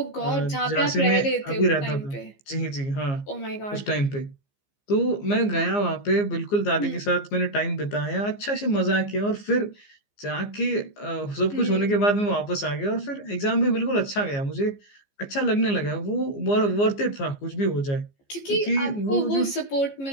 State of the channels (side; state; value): right; late; 15 ms